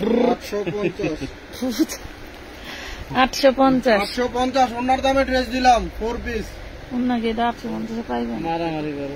850। 850 850 ওনার দামে ড্রেস দিলাম 4 পিস। ওনাকে 850 পাইবেন। মারামারি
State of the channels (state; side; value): identical; both; correlation 1.00